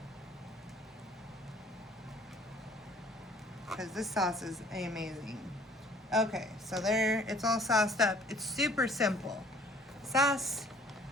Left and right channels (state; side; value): normal; both; correlation 0.55